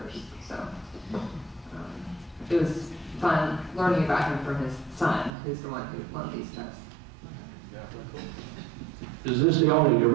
So it was fun learning about him from his son, who's the one who loaned these to us. Is this the only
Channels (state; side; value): drops out; left; at 5.3 s